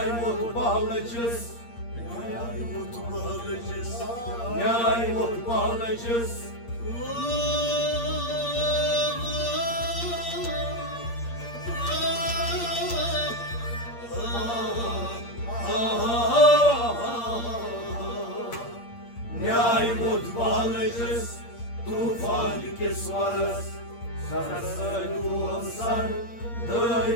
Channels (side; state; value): right; late; 8.6 ms